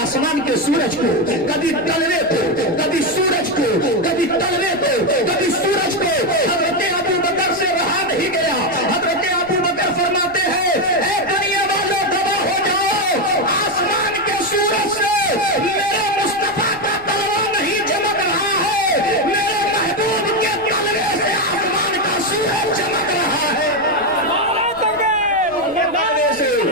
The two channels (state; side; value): noise; left; rumble, 23 dB below the sound